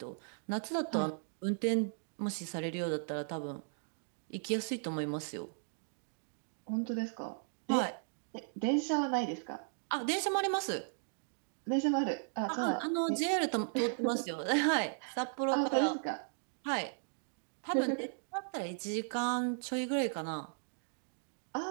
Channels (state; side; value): silent; left; digital silence